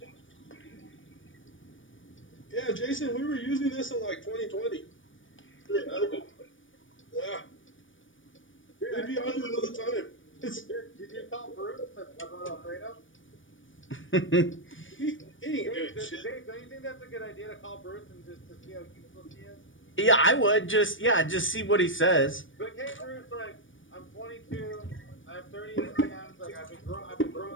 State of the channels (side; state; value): right; late; 0.57 ms